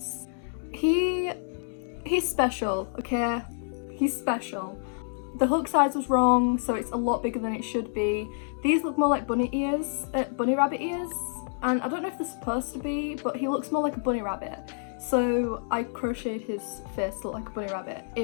He's special, okay? He's special. The hook size was wrong, so it's a lot bigger than it should be. These look more like bunny ears, bunny rabbit ears, and I don't know if they're supposed to be, but he looks more like a bunny rabbit. So I crocheted his face to look like a bunny rabbit.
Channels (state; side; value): silent; right; digital silence